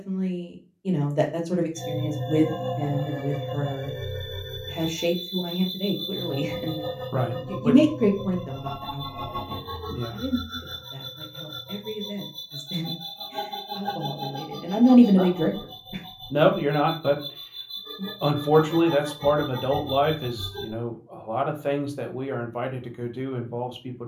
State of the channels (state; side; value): identical; both; correlation 1.00